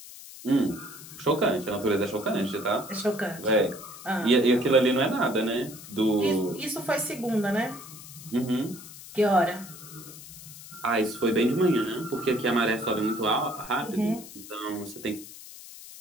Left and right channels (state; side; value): noise; left; hiss, 16 dB below the sound